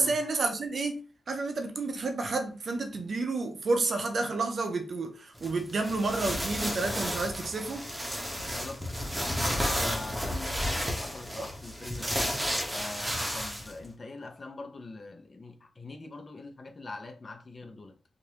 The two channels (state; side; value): normal; both; correlation 0.89